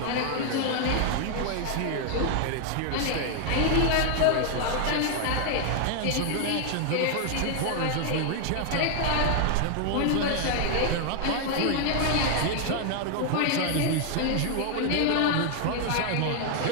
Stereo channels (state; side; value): different; both; correlation 0.00